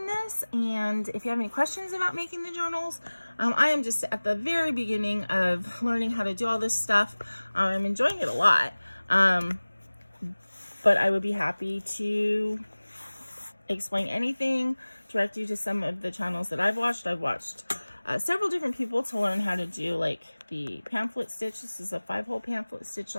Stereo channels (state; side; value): inverted; both; correlation -1.00